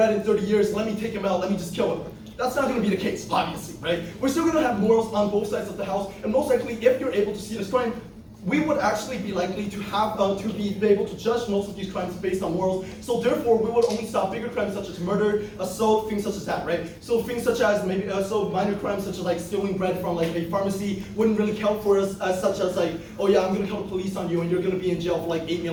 in 30 years, let me take him out, let me just kill him. That's not going to be the case, obviously, right? We're still going to have morals on both sides of the house, and most likely, if you're able to see this crime, we would actually be likely to have to be able to judge most of these crimes based on morals. So therefore, we would only stop bigger crimes such as murder, assault, things such as that, right? So things such as maybe minor crimes such as like stealing bread from like a pharmacy wouldn't really count for us, such as like, oh yeah, I'm going to call the police on you and you're going to be in jail for like 8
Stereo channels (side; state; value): both; identical; correlation 1.00